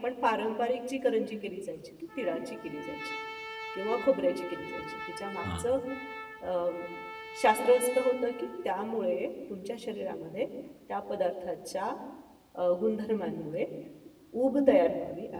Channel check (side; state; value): both; identical; correlation 1.00